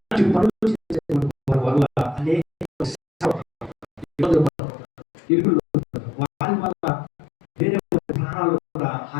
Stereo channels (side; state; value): right; drops out; at 4.5 s